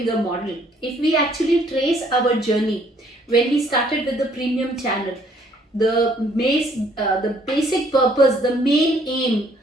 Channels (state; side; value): normal; both; correlation 0.63